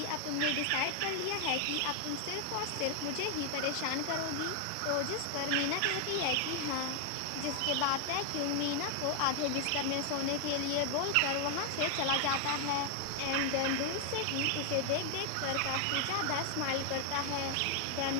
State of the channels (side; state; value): both; different; correlation 0.00